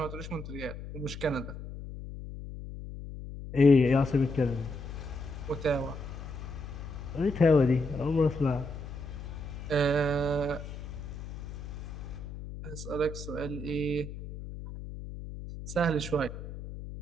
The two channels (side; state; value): left; noise; hum, 10 dB below the sound